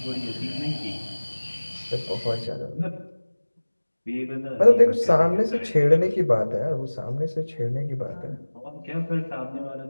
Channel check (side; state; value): both; inverted; correlation -1.00